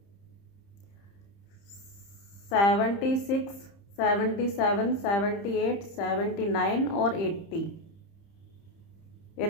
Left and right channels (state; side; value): late; right; 30 ms